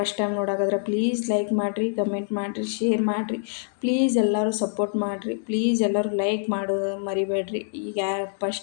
ಟೈಮ್ ನೋಡಾಕದ್ರೆ ಪ್ಲೀಸ್ ಲೈಕ್ ಮಾಡಿರಿ, ಕಮೆಂಟ್ ಮಾಡಿರಿ, ಶೇರ್ ಮಾಡಿರಿ. ಪ್ಲೀಸ್ ಎಲ್ಲರೂ ಸಪೋರ್ಟ್ ಮಾಡಿರಿ. ಪ್ಲೀಸ್ ಎಲ್ಲರೂ ಲೈಕ್ ಮಾಡೋದು ಮರಿಬೇಡ್ರಿ. ಈಗ ಯಾರು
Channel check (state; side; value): silent; right; digital silence